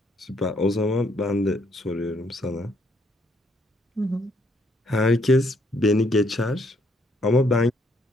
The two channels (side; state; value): both; normal; correlation 0.70